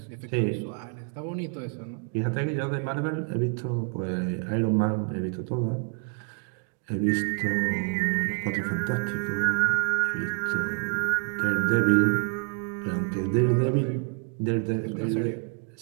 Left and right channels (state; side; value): quieter; left; 36.2 dB